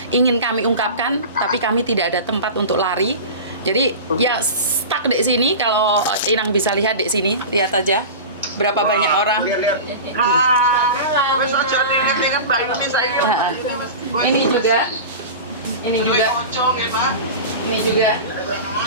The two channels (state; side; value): inverted; both; correlation -0.30